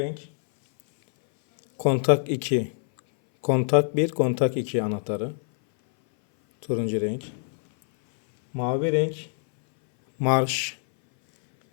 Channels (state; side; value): silent; right; 59 dB below the other